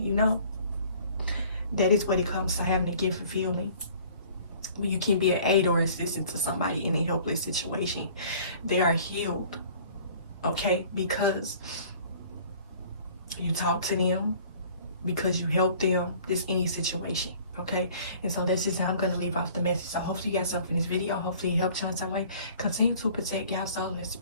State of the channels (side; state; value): both; inverted; correlation -0.51